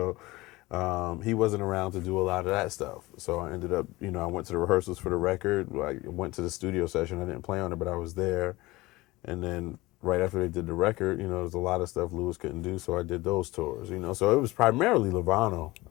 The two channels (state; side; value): quieter; right; 20.5 dB